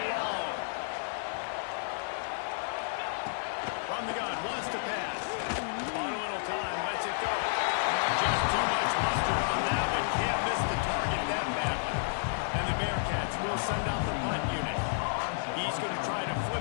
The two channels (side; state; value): right; silent; digital silence